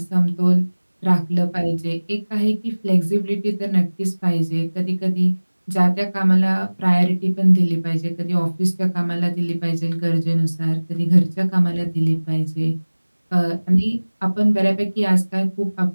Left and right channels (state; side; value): inverted; both; correlation -1.00